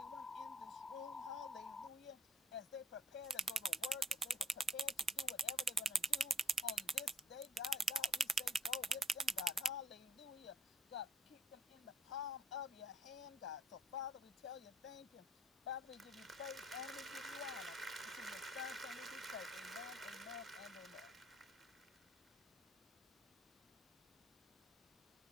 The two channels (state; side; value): normal; both; correlation 0.64